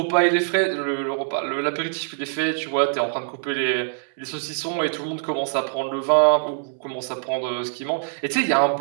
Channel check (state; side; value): silent; left; 63 dB below the other